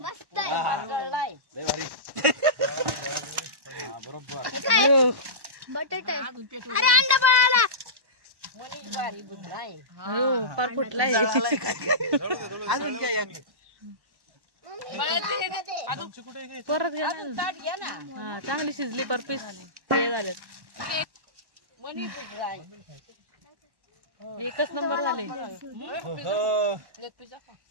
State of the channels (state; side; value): late; left; 1.1 ms